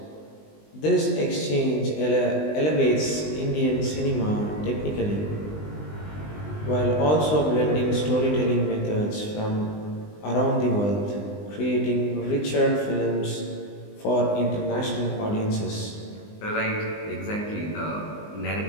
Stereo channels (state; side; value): late; right; 20 ms